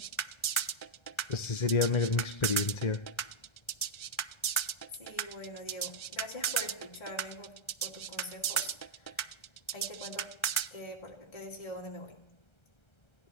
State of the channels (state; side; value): late; right; 1.3 ms